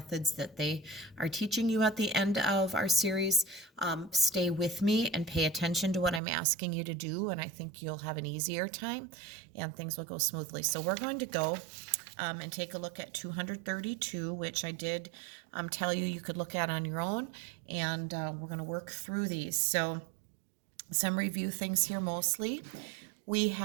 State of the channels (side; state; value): left; drops out; at 6.2 s